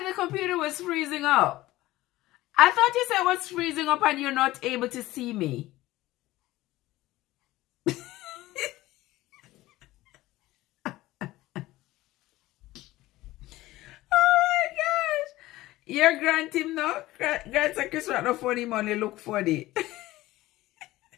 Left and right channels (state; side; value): quieter; right; 17.3 dB